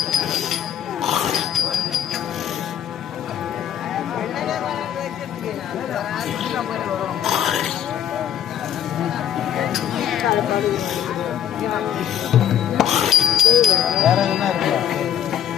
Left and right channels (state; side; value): quieter; right; 9.9 dB